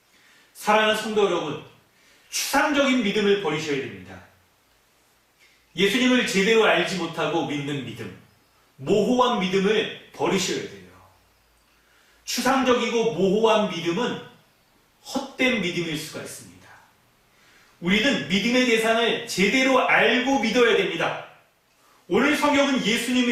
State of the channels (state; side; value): identical; both; correlation 1.00